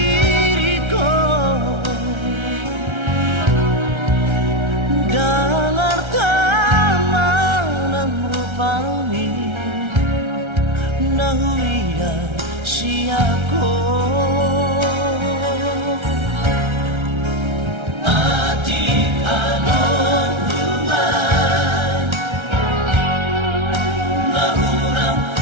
dalar taman rupani nahuia siako mati anon rumah nahurang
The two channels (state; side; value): late; left; 1.3 ms